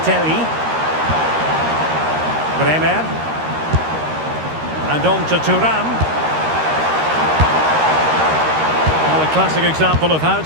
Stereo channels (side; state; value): left; late; 13 ms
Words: Bremer. And on to Thuram. Well, a classic example of how